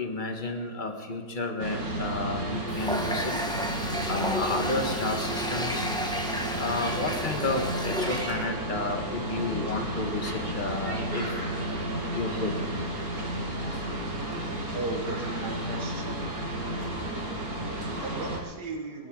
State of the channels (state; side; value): normal; both; correlation -0.16